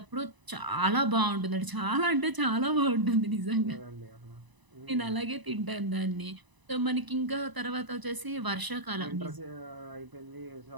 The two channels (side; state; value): left; late; 1.0 ms